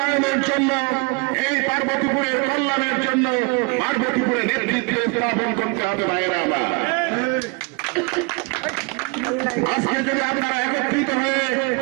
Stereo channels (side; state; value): left; quieter; 29.8 dB